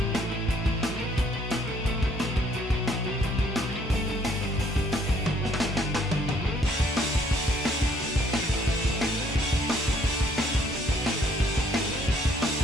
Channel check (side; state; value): both; normal; correlation 0.64